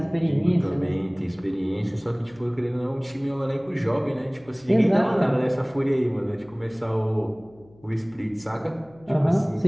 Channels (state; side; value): noise; left; hum, 26 dB below the sound